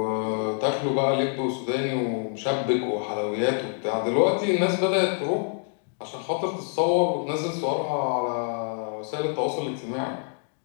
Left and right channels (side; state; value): right; silent; 58 dB below the other